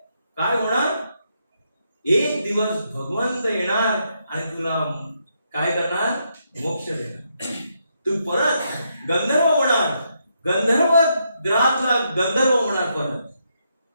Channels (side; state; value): both; inverted; correlation -0.79